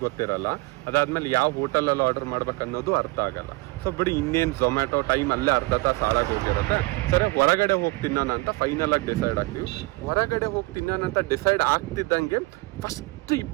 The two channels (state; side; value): quieter; left; 23.9 dB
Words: ಗೊತ್ತಿರಲ್ಲ. ಅದಾದ್ಮೇಲೆ ಯಾವ ಹೋಟೆಲಲ್ಲಿ ಆರ್ಡರ್ ಮಾಡ್ಬೇಕು ಅನ್ನೋದು ಅರ್ಥ ಆಗಲ್ಲ. ಸೊ ಬಿಡಿ, ಇನ್ನೇನು ಝೊಮ್ಯಾಟೋ ಟೈಮ್ ಅಲ್ಲೇ ಅರ್ಧ ತಾಸು ಹಾಳಾಗಿ ಹೋಗಿರುತ್ತೆ. ಸರಿ, ಹೊರಗಡೆ ಹೋಗಿ ತಿನ್ನೋಣ ಅಂತ ಫೈನಲ್ ಆಗಿ ಡಿಸೈಡ್ ಆಗ್ತೀವಿ. ಹೊರಗಡೆ ಹೋಗಿ ತಿನ್ನೋಣ ಅಂತ ಡಿಸೈಡ್ ಆಗ್ತಿದ್ದಂಗೆ ಫಸ್ಟ್